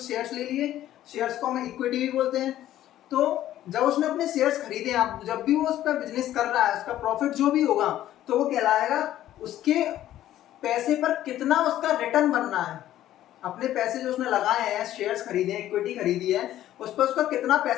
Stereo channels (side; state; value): right; quieter; 13.0 dB